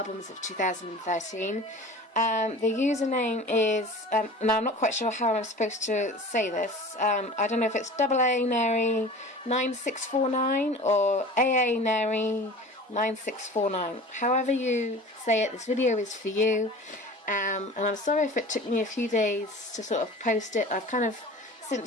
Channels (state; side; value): normal; both; correlation 0.39